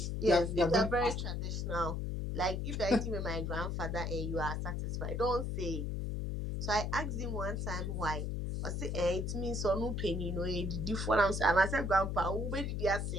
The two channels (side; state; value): left; noise; hum, 2 dB below the sound